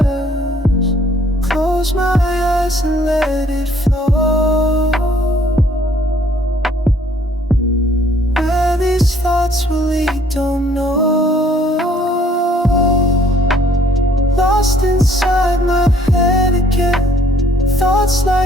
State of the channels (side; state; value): both; normal; correlation 0.61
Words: Close my eyes and let it flow. Where these thoughts will lead, don't know. Lost inside my head again. Thoughts